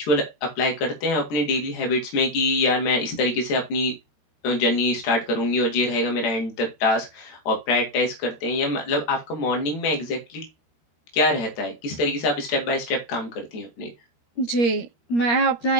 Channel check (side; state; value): right; late; 13 ms